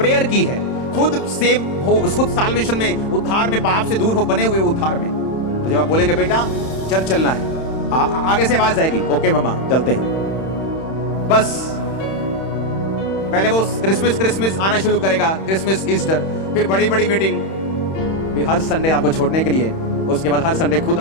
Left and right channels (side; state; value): right; late; 31 ms